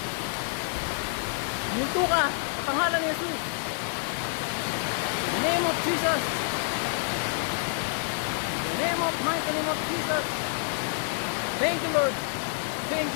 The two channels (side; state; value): right; silent; digital silence